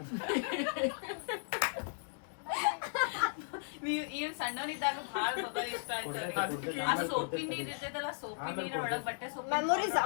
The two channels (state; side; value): silent; right; digital silence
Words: ಈ ಸಣ್ಣವನಿದ್ದಾಗ ಭಾಳ ಬಬ್ಬಲ್ ಇಷ್ಟ ಆಯ್ತು. ಆ ಸೋಪಿ ನೀರ್ ಇರ್ತೈತಲ್ಲ, ಸೋಪಿ ನೀರ್ ಒಳಗ್ ಬಟ್ಟೆ ಸೋಪಿ ಮೆಮೊರೀಸ್